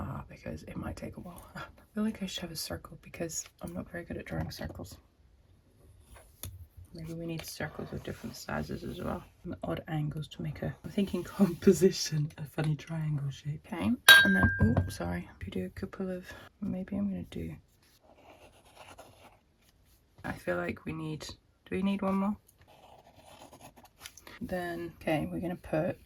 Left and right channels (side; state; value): both; identical; correlation 1.00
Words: because it might take a while. I feel like I should have a circle because I'm not very good at drawing circles. Maybe we need circles of different sizes as well, and odd angles to make I'm thinking composition, a funny triangle shape. Okay, and then, oh, sorry, if you do a couple of, maybe I'm going to do, I feel like do we need one more? Then, okay, we're going to